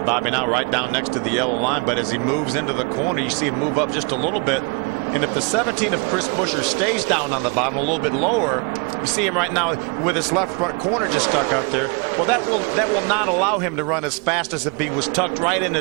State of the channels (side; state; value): left; quieter; 32.7 dB